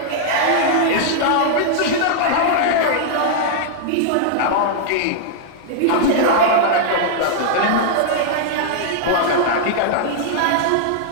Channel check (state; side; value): different; both; correlation -0.01